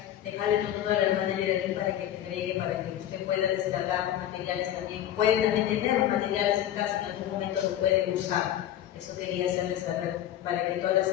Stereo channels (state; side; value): quieter; right; 11.7 dB